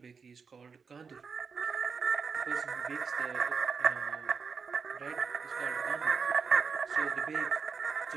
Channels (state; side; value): quieter; left; 5.5 dB